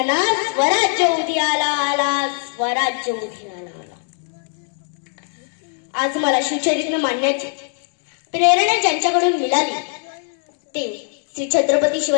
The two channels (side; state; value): right; silent; 56 dB below the other